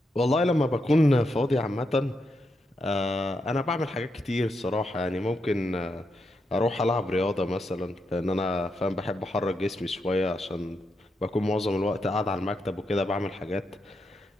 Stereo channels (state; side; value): normal; both; correlation 0.83